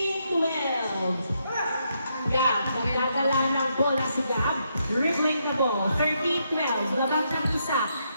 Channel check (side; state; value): both; inverted; correlation -0.78